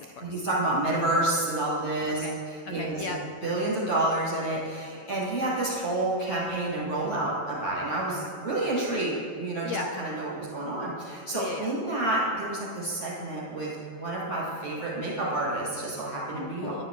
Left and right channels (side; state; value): right; late; 9.1 ms